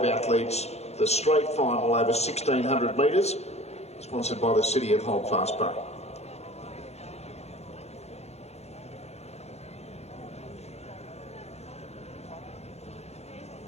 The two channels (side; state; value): right; late; 0.31 ms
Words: athletes, the straight final over 1,600 metres, sponsored by the City of Holdfast Bay.